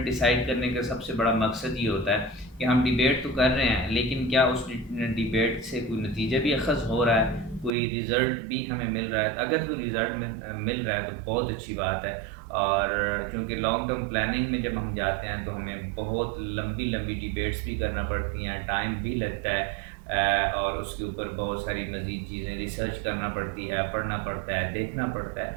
ڈیسائیڈ کرنے کا سب سے بڑا مقصد یہ ہوتا ہے کہ ہم ڈیبیٹ تو کر رہے ہیں لیکن کیا اس ڈیبیٹ سے کوئی نتیجہ بھی اخذ ہو رہا ہے، کوئی ریزلٹ بھی ہمیں مل رہا ہے۔ اگر کوئی ریزلٹ مل رہا ہے تو بہت اچھی بات ہے، اور چونکہ لانگ ٹرم پلاننگ میں جب ہم جاتے ہیں تو ہمیں بہت لمبی ڈیبیٹس بھی کرنا پڑتی ہیں، ٹائم بھی لگتا ہے، اور اس کے اوپر بہت ساری مزید چیزیں ریسرچ کرنا پڑتی ہے، پڑھنا پڑتا ہے، دیکھنا پڑتا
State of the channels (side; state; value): left; drops out; at 7.7 s